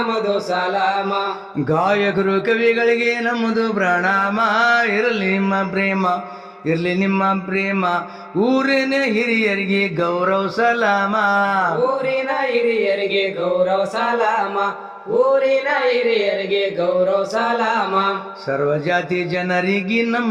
ಸಲಾಮ. ಗಾಯಕರು ಕವಿಗಳಿಗೆ ನಮ್ಮದು ಪ್ರಣಾಮ, ಇರಲಿ ನಿಮ್ಮ ಪ್ರೇಮ ಇರ್ಲಿ ನಿಮ್ಮ ಪ್ರೇಮ, ಊರಿನ ಹಿರಿಯರಿಗೆ ಗೌರವ ಸಲಾಮ, ಊರಿನ ಹಿರಿಯರಿಗೆ ಗೌರವ ಸಲಾಮ, ಊರಿನ ಹಿರಿಯರಿಗೆ ಗೌರವ ಸಲಾಮ. ಸರ್ವಜಾತಿ ಜನರಿಗೆ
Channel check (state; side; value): identical; both; correlation 1.00